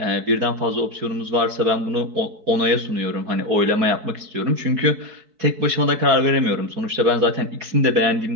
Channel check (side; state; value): left; late; 4.6 ms